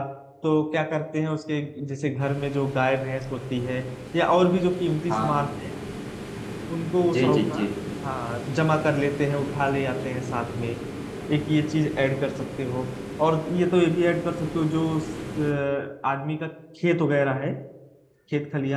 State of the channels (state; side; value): identical; both; correlation 1.00